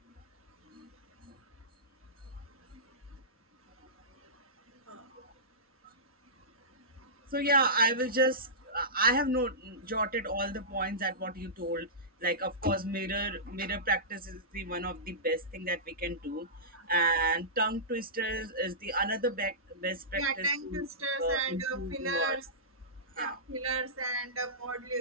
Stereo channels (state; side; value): normal; both; correlation -0.18